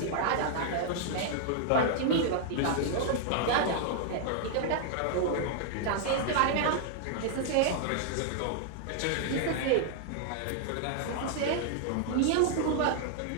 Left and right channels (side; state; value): both; different; correlation -0.01